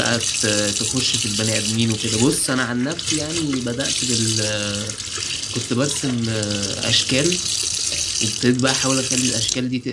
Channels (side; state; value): both; identical; correlation 1.00